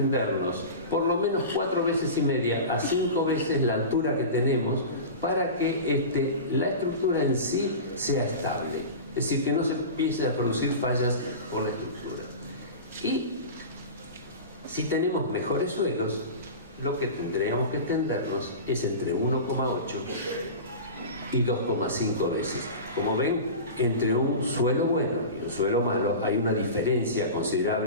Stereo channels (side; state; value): both; inverted; correlation -0.30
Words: por lo menos 4,5 veces a 5 veces la altura que tenemos para que la estructura en sí sea estable. Es decir, que no se empiece a producir fallas por la estructura. Y si tenemos mejores suelos, lo que tendríamos que extendernos es entre 1,8 y 2,5 veces. Como ven, entre un suelo bueno y un suelo malo hay una diferencia